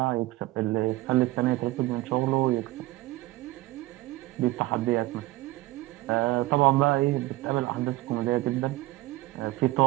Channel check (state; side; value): quieter; left; 18.5 dB